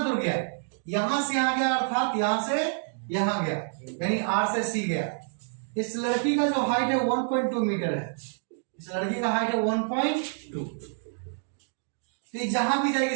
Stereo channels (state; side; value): silent; left; digital silence